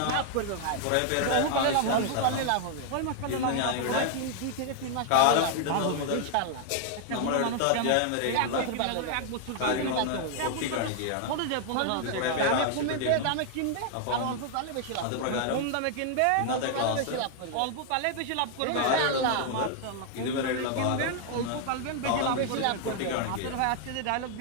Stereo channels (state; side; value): different; both; correlation 0.00